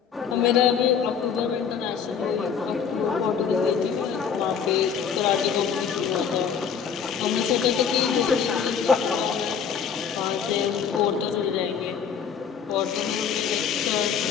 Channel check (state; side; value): quieter; right; 7.0 dB